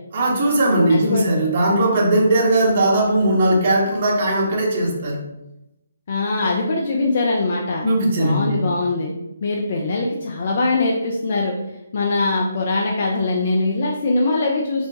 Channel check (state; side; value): inverted; both; correlation -0.74